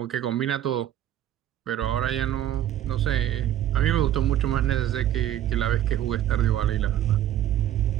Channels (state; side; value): quieter; left; 11.8 dB